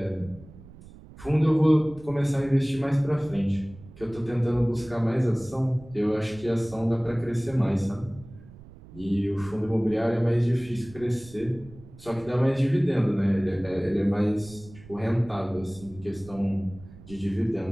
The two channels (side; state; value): right; noise; rumble, 19 dB below the sound